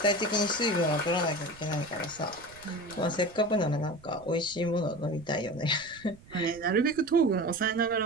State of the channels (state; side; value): noise; right; rumble, 22 dB below the sound